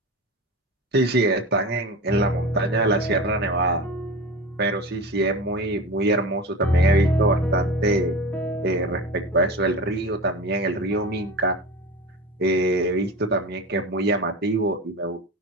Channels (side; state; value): both; normal; correlation 0.30